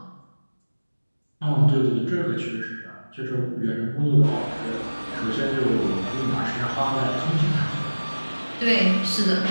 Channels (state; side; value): inverted; both; correlation -1.00